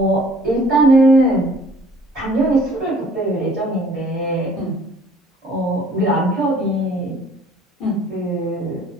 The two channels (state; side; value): normal; both; correlation 0.55